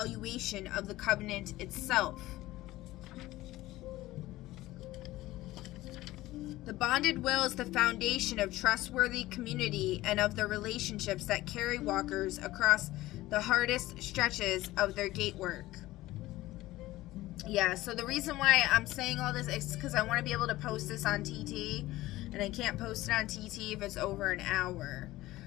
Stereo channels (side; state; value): right; quieter; 17.2 dB